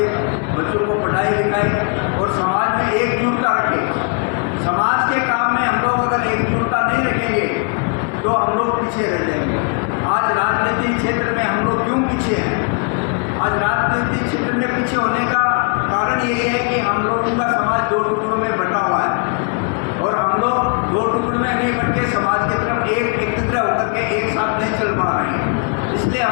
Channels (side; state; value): right; quieter; 37.4 dB